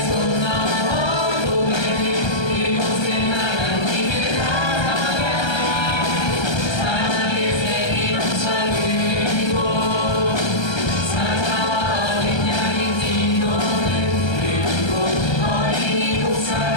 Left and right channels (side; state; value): right; late; 1.3 ms